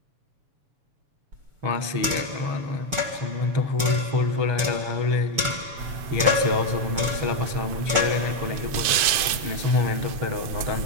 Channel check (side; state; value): left; late; 7.0 ms